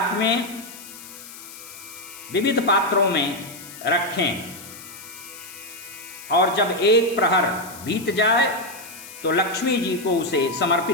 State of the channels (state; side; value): noise; left; hiss, 15 dB below the sound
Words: में विविध पात्रों में रखें और जब एक प्रहर बीत जाए तो लक्ष्मी जी को उसे